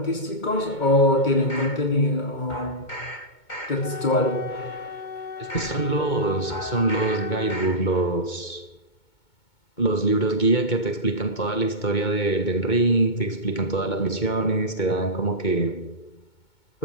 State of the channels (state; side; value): late; right; 2.2 ms